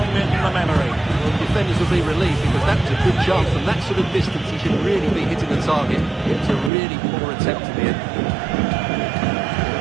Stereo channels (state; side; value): drops out; left; at 6.7 s